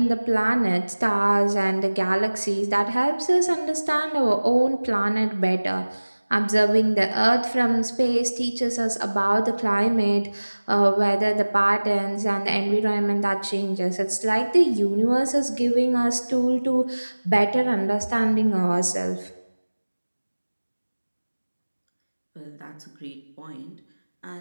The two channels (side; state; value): both; inverted; correlation -1.00